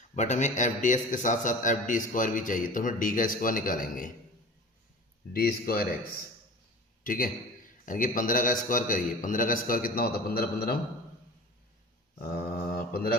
बट हमें एफ डी एक्स के साथ साथ एफ डी स्क्वायर भी चाहिए, तो हम डी का स्क्वायर निकालेंगे, डी स्क्वायर एक्स। ठीक है, यानी कि 15 का स्क्वायर करिए। 15 का स्क्वायर कितना होता है 15 15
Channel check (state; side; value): normal; both; correlation 0.37